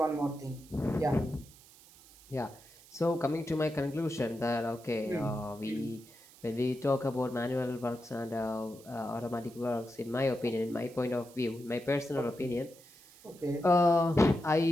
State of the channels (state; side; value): noise; right; hiss, 23 dB below the sound